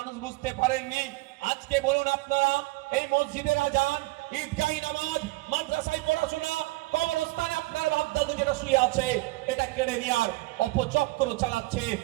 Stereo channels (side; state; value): left; quieter; 21.7 dB